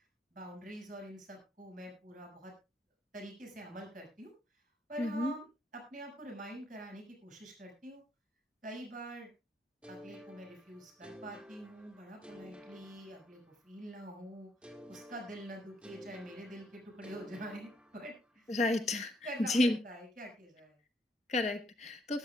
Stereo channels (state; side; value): normal; both; correlation 0.72